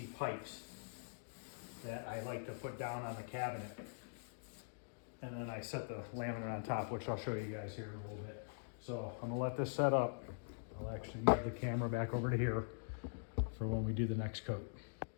pipes that I like to put down on the cabinet. And then I set the laminate on top, which I'll show you guys here in a little bit. So I'm gonna let this set up. I'll actually move the camera back over to here for when we do the next coat.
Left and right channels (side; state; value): right; silent; digital silence